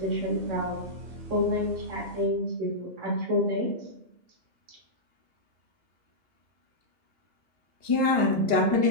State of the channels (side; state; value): left; late; 2.8 ms